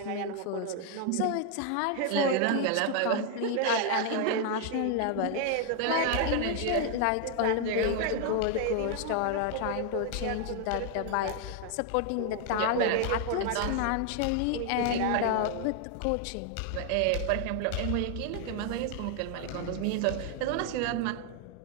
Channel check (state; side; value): different; both; correlation 0.00